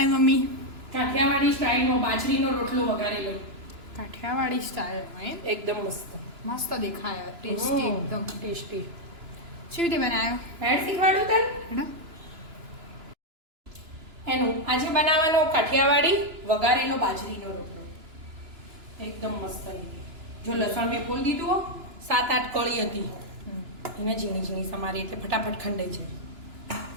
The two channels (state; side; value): late; left; 2.9 ms